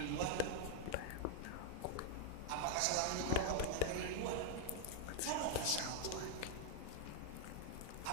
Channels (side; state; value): both; different; correlation 0.00